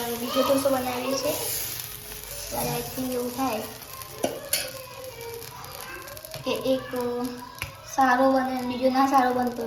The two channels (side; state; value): both; identical; correlation 1.00